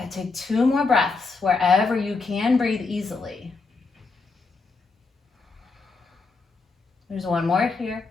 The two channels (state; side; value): quieter; right; 4.1 dB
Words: take 2 more breaths wherever you can breathe easily. There's 1 more here.